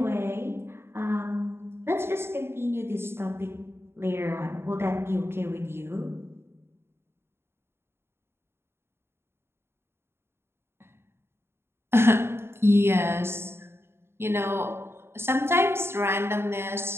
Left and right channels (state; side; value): late; left; 0.12 ms